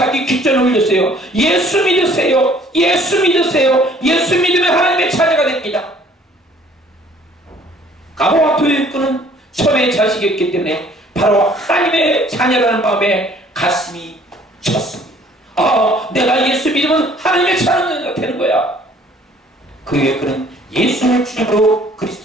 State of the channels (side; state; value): both; normal; correlation 0.57